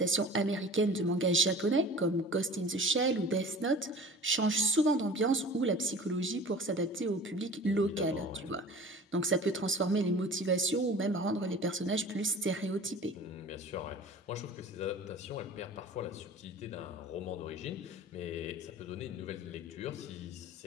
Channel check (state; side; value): normal; both; correlation 0.40